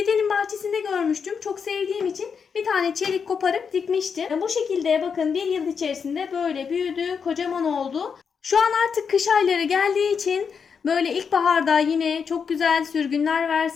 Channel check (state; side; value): quieter; right; 6.3 dB